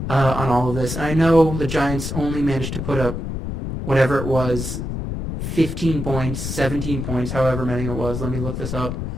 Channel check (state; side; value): noise; left; rumble, 5 dB below the sound